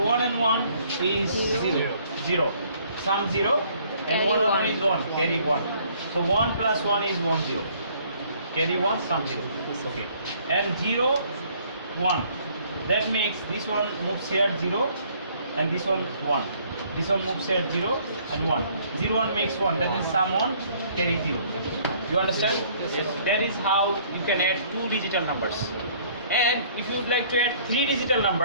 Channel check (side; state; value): both; inverted; correlation -0.60